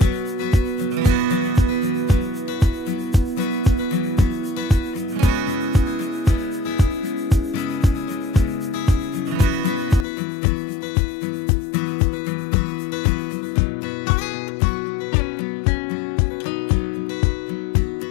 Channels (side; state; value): right; drops out; at 10.1 s